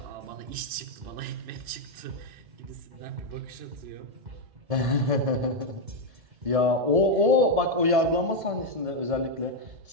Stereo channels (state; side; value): late; left; 1.7 ms